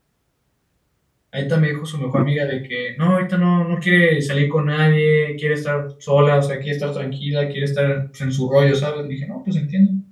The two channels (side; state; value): both; identical; correlation 1.00